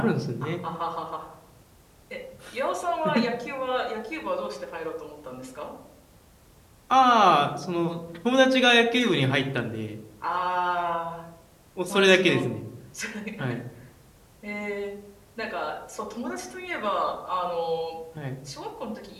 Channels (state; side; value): identical; both; correlation 1.00